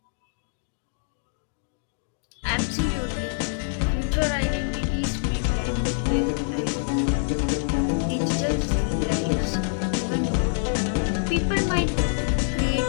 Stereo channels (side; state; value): right; silent; digital silence